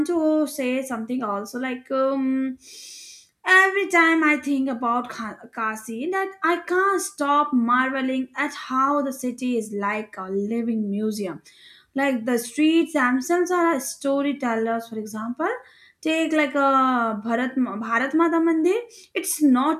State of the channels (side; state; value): both; identical; correlation 1.00